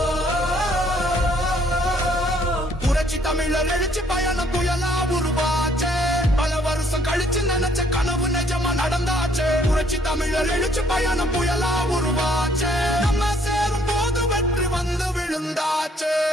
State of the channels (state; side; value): normal; both; correlation 0.64